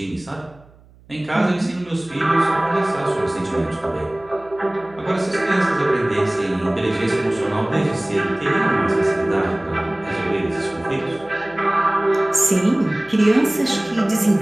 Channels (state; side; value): noise; right; hum, 27 dB below the sound